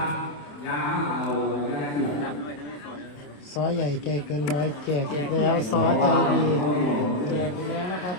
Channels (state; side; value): late; right; 27 ms